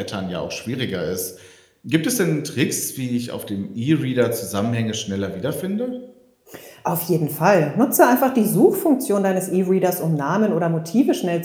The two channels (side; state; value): both; identical; correlation 1.00